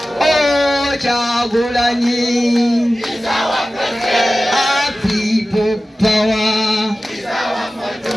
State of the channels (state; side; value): normal; both; correlation 0.95